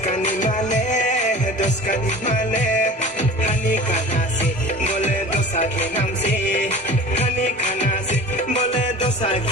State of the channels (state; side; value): normal; both; correlation 0.39